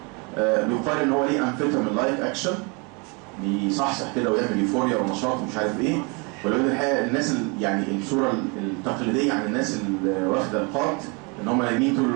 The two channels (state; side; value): quieter; left; 31.3 dB